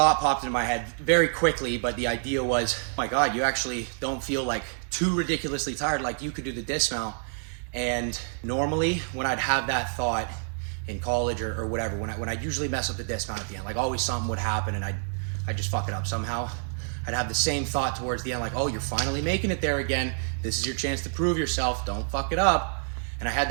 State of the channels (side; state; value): left; silent; digital silence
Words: popped into my head very quickly, but the idea was, oh my God, you actually don't feel like too ridiculously tired, like you could do the dismount. And normally when I'd have that thought in college or whatever, when I usually mess up the dismount at the end, like always something would happen and I'd just fuck it up somehow. I'd have the same thought towards the end, like, oh, you're finally making it there again. This is your chance to prove yourself. Don't fuck it up. And I had